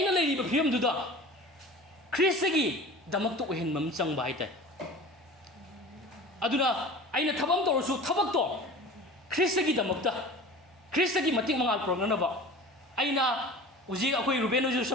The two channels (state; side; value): normal; both; correlation 0.38